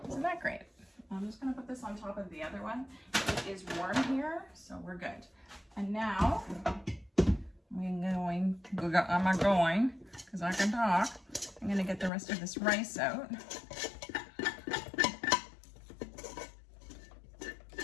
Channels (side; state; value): right; drops out; at 12.1 s